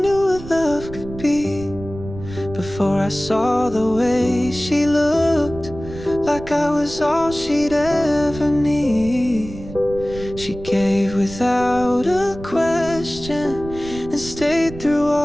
what love could be, before I saw the way she looked, like I was all she'd ever need. She gave without a question, and stayed through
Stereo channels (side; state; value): right; noise; rumble, 13 dB below the sound